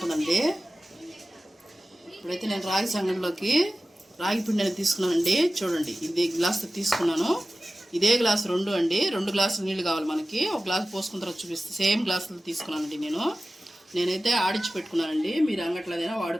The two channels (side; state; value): both; normal; correlation 0.96